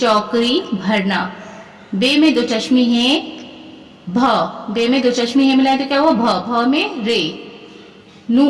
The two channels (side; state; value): both; identical; correlation 1.00